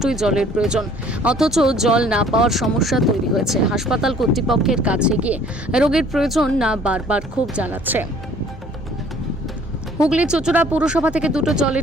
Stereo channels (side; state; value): both; normal; correlation 0.55